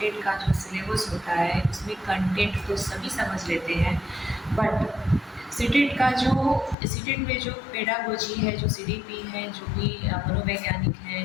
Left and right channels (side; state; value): right; drops out; at 6.8 s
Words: का जो सिलेबस होता है उसमें कंटेंट तो सभी समझ लेते हैं, बट सीटेट में जो पेडागोजी है, जो सीडीपी है, जो भी मनोवैज्ञानिक